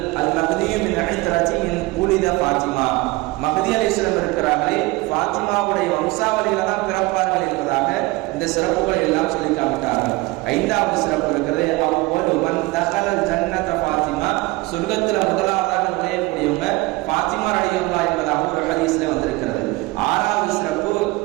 அல் மஹ்தியு மின் ஐத்ரதி மின் உலித ஃபாத்திமா. மஹ்தி அலைஹிஸ்ஸலாம் இருக்கிறார்களே, ஃபாத்திமாவுடைய வம்சாவளியில தான் பிறப்பார்கள் என்பதாக இந்த சிறப்புகளை எல்லாம் சொல்லி காமிட்டார்கள். ஐந்தாவது சிறப்பு இருக்கிறது, அவ்வலு மன் தஹலல் ஜன்னத ஃபாத்திமா, சொர்க்கத்தில் முதலாவதாக நுழையக்கூடியவங்க ஃபாத்திமா ரலியல்லாஹு என்பதாக ஒரு ஹதீஸ்ல வந்திருக்கிறது. ஆறாவது சிறப்பு,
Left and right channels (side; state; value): left; quieter; 22.0 dB